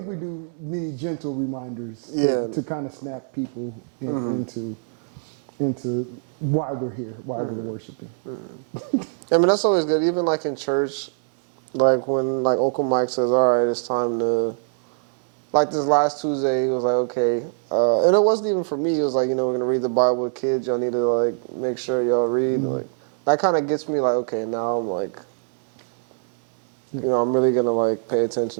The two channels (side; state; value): left; silent; 63 dB below the other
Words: we do need gentle reminders to kind of snap people into why we're here, why we're worshiping. I mean, that's always good. Even like in church, like when like Uncle Mike says, all right, it's time to, like this last Tuesday, he was like, okay. And it wasn't even for me. It was like, we're going to read the Bible with kids. Y'all need to like make sure y'all read. Like that kind of gets me like, okay, now I'm like, You know, I'm really gonna like pay